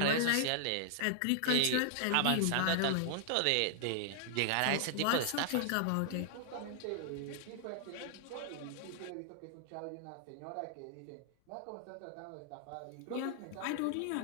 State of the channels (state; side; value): different; both; correlation 0.00